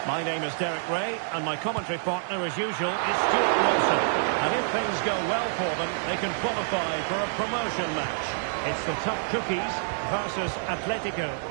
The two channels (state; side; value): silent; left; digital silence